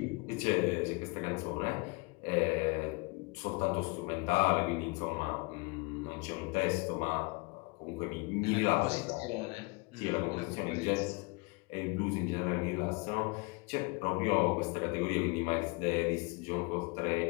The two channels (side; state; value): right; quieter; 28.9 dB